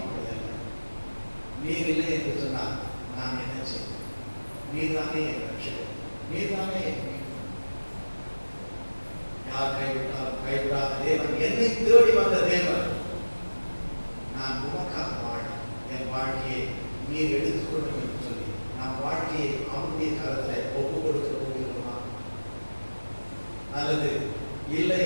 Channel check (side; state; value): both; inverted; correlation -1.00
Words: நீர் இல்லை என்று சொன்னால் நான் என்ன செய்வேன்? நீர்தானே என் ரட்சகர், நீர்தானே என் மீட்பர். யார் கைவிட்டாலும் கைவிடாத தேவன், என்னை தேடி வந்த தேவன். நான் உமக்காக வாழ என் வாழ்க்கையை நீர் எடுத்துக்கொள்ளும் என்று சொல்லி நம் வாழ்க்கையை அவனுடைய கரத்தில் ஒப்பு கொடுக்க போகிறோமா? அல்லது இல்லை